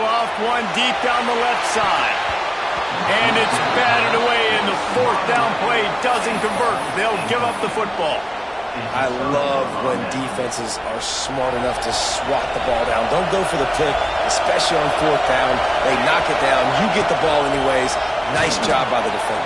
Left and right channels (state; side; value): identical; both; correlation 1.00